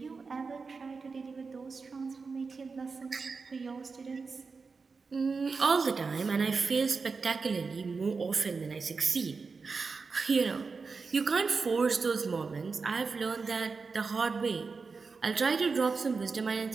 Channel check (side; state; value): left; quieter; 4.7 dB